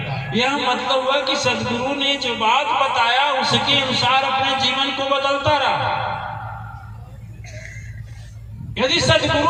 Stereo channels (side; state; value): both; identical; correlation 1.00